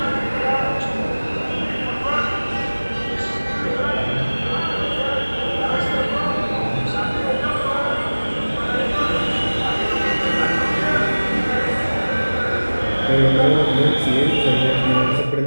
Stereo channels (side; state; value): both; inverted; correlation -1.00